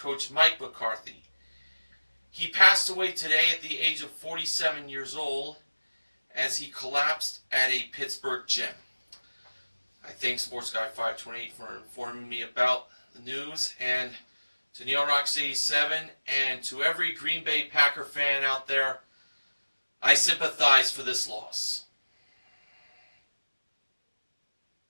Mike McCarthy. He passed away today at the age of 47 years old as he collapsed at a Pittsburgh gym. I thank Sports Guy 528 for informing me about the news, and to Neil Rocks 87 and to every Green Bay Packer fan out there, I sympathize for this loss.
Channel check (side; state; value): both; inverted; correlation -1.00